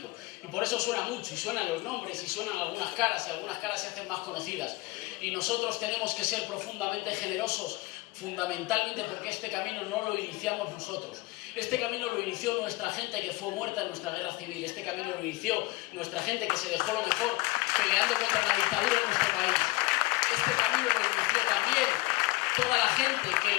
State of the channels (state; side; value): quieter; right; 22.1 dB